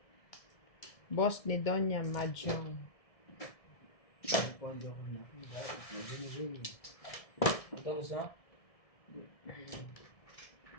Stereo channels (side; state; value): right; late; 1.7 ms